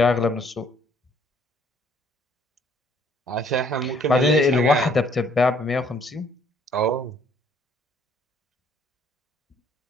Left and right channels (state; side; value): normal; both; correlation 0.62